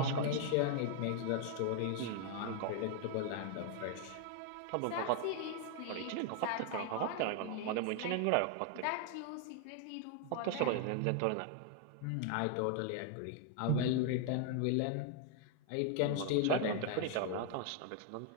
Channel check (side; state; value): both; different; correlation 0.00